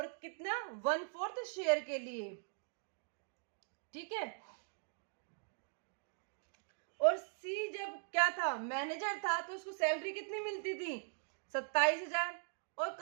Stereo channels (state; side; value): silent; left; digital silence